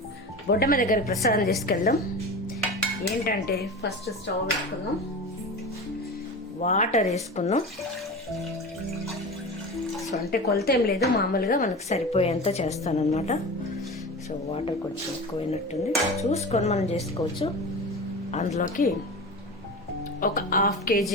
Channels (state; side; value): normal; both; correlation 0.30